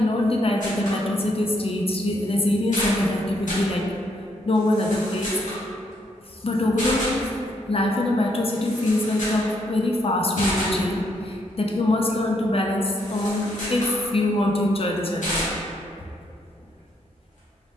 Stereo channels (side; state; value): both; normal; correlation 0.73